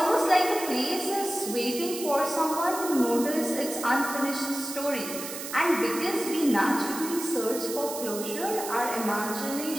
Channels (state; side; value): noise; right; hiss, 8 dB below the sound